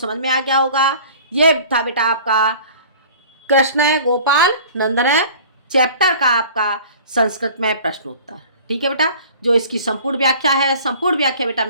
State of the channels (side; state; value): both; inverted; correlation -0.45